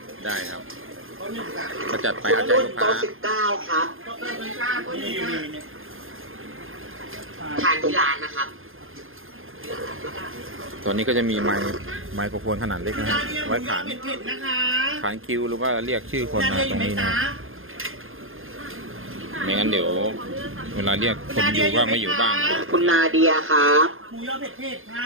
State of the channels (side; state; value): left; late; 0.60 ms